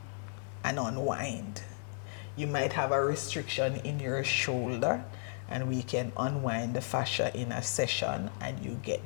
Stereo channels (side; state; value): right; silent; 55 dB below the other